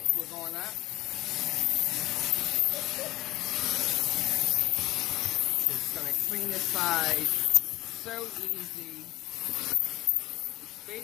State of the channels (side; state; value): right; quieter; 17.0 dB